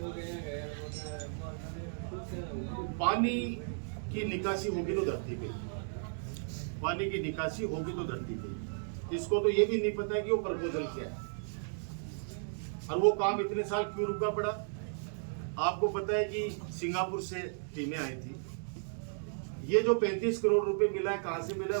पानी की निकासी होगी तो धरती पे, पानी की निकासी होगी तो धरती पे। इसको तो ये भी नहीं पता है कि वो प्रपोजल क्या है और वो काम इतने साल क्यों रुका पड़ा। आपको पता है कि सिंगापुर से टीमें आई थी, ये जो 35 करोड़ रुपए मिला है कहां से मिला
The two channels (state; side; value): silent; left; digital silence